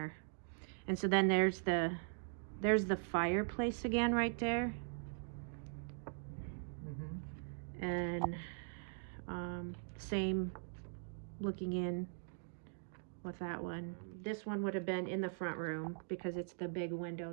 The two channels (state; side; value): silent; left; digital silence